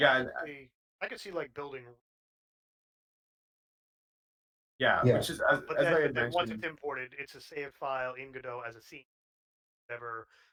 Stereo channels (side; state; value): both; identical; correlation 1.00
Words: I could see like building. Yeah. Which is as I had then once mentioned. it's imported, it's a saved file in Godot as a scene, whatever,